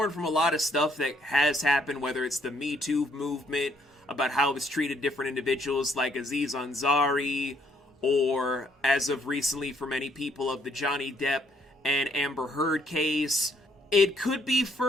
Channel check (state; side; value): normal; both; correlation 0.68